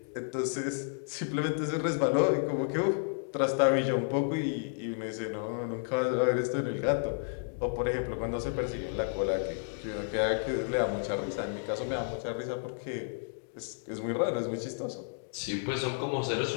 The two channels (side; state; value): right; silent; digital silence